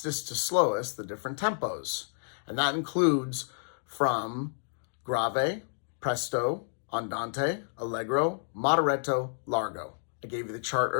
to slowest the different tempos. And that includes from grave, presto, andante, allegro, moderato, largo. I gave you the chart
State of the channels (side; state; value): right; silent; digital silence